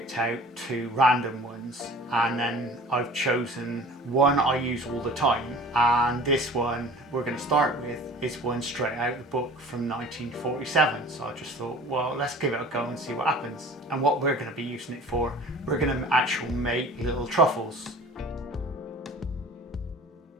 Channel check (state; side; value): normal; both; correlation 0.44